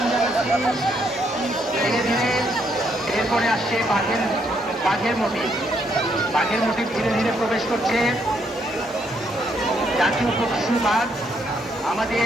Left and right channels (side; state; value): both; normal; correlation 0.73